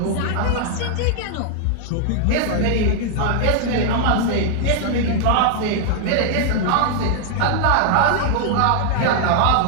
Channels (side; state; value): both; different; correlation 0.00